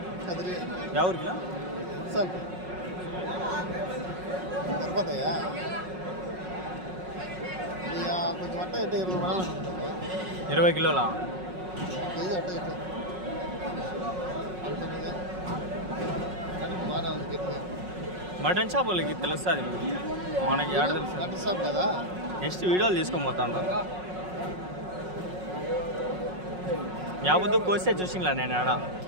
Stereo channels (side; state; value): left; late; 5.4 ms